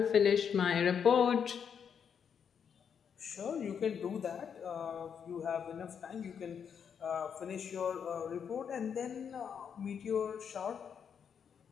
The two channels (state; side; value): quieter; right; 7.4 dB